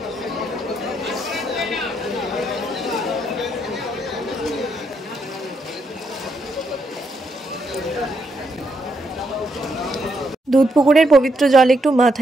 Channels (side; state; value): both; normal; correlation 0.77